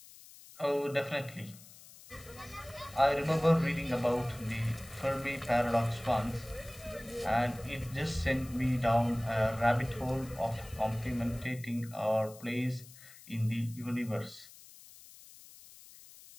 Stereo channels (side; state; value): left; noise; hiss, 20 dB below the sound